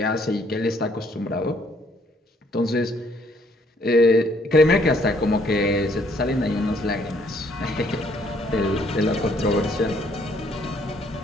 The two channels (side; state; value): both; normal; correlation 0.65